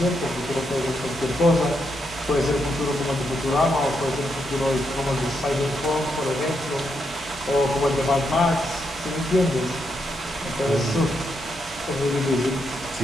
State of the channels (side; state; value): both; normal; correlation 0.81